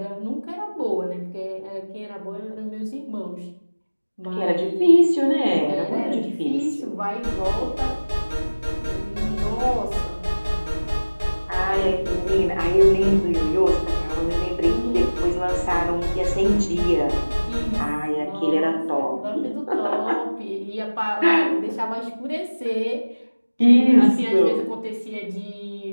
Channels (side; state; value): both; inverted; correlation -1.00